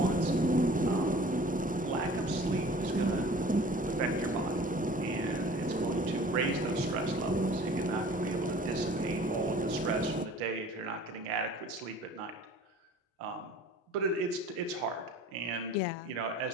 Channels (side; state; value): both; normal; correlation 0.47